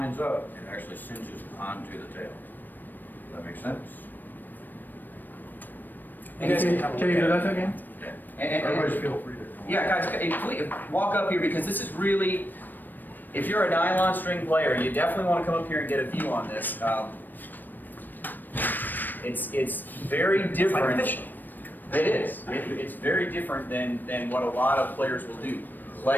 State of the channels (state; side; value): late; right; 0.090 ms